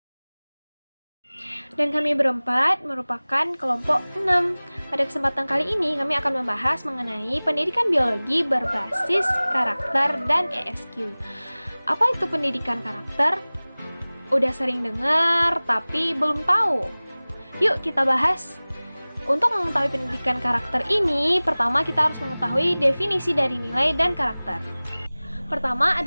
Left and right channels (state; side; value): inverted; both; correlation -0.99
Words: Dan kami berempat merupakan kelompok 6. Pada kesempatan kali ini kami akan membahas mengenai pendidikan biologi berbasis karakter dan ESQ. Apa itu pendidikan karakter? Udah sering dengar tapi belum tahu. Yuk kita bahas. Untuk mengetahui pendidikan karakter ini, pertama kita harus mengetahui definisi dari nilai dan karakter. Pertama